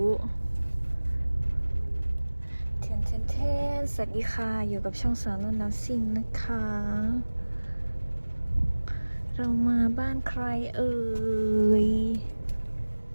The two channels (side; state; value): both; inverted; correlation -1.00